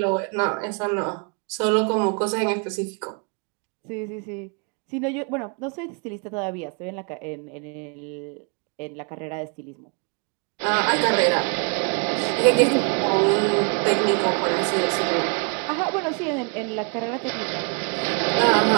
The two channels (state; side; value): quieter; left; 37.0 dB